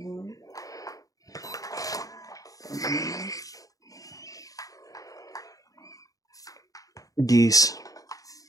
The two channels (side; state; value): right; late; 0.17 ms